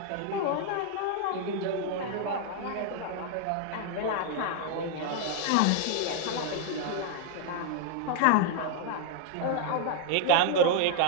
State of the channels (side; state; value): both; different; correlation 0.00